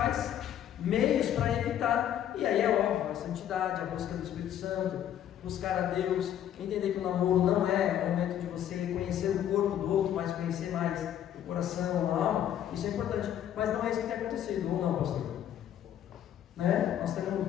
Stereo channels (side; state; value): right; quieter; 10.6 dB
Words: meios para evitar. E aí é óbvio, a santidade, a busca do Espírito Santo, buscar a Deus, entender que o namoro não é o momento de você conhecer o corpo do outro, mas conhecer mais o coração, a alma. Isso é importante, mas não é isso que tem acontecido, ou não, pastor? Né? Nós temos